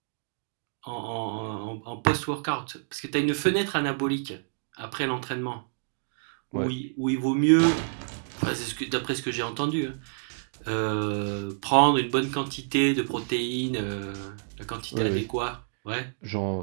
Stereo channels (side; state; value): left; silent; digital silence